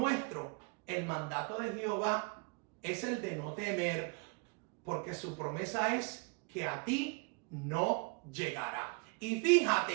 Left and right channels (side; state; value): left; quieter; 33.8 dB